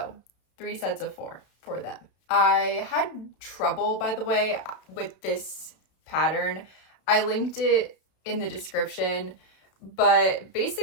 3 sets of 4 for them. I had trouble, by the way, with this pattern. I linked it in the description, but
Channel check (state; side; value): late; right; 32 ms